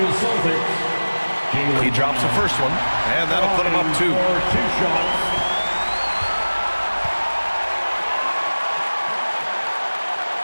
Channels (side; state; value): both; inverted; correlation -1.00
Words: Celtics. He drops the first one, and that'll put him up 2. 2 shots.